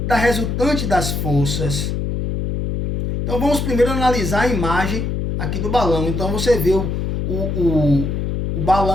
da resultante das forças? Então vamos primeiro analisar a imagem aqui do balão. Então você vê o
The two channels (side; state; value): left; noise; hum, 2 dB below the sound